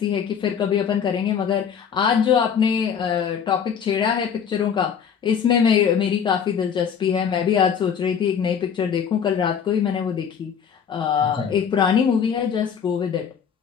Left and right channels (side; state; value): right; quieter; 7.5 dB